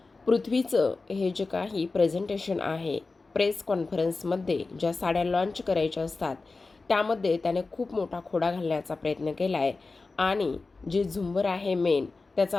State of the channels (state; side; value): quieter; right; 3.8 dB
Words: पृथ्वीचं हे जे काही प्रेझेंटेशन आहे, प्रेस कॉन्फरन्समध्ये ज्या साड्या लॉन्च करायच्या असतात त्यामध्ये त्याने खूप मोठा खोडा घालण्याचा प्रयत्न केला आहे आणि जे झुंबर आहे मेन